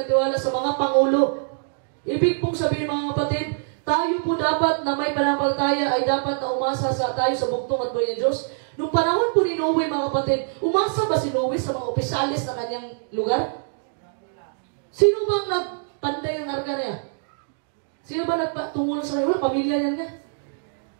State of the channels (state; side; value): silent; left; digital silence